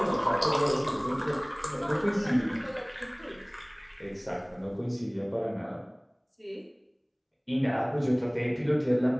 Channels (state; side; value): identical; both; correlation 1.00